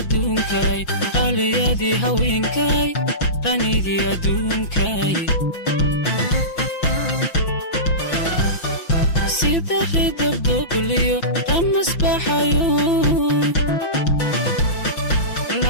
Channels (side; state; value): right; late; 5.6 ms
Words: qaliyadii haweenkay ranidii adduunkay sida ridabdogliyo ramasbaxayo